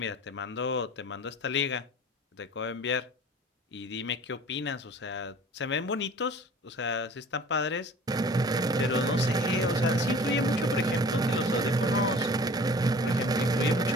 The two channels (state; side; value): normal; both; correlation 0.46